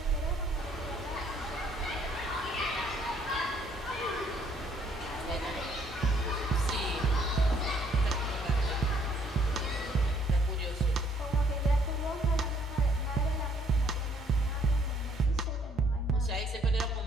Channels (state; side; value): normal; both; correlation 0.64